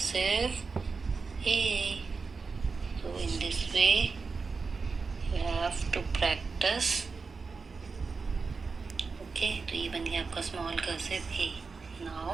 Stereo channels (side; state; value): left; quieter; 4.6 dB